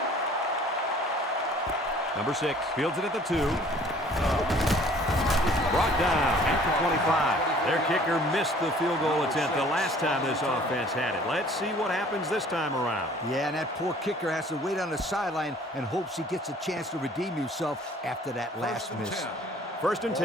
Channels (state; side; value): normal; both; correlation 0.53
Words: Number 6 fields it at the 2. Brought down after 25. Their kicker missed the field goal attempt the last time this offense had it. Let's see what happens this time around. Yeah, and that poor kicker has to wait on the sideline and hopes he gets a chance to redeem himself after that last miss. First and